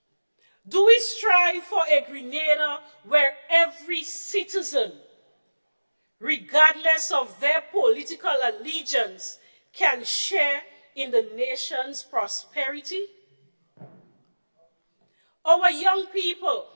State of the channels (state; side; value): inverted; both; correlation -1.00